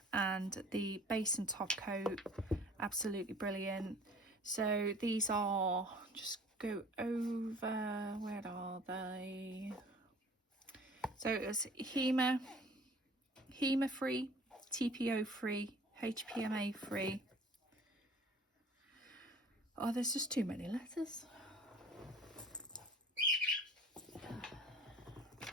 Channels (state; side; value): normal; both; correlation 0.48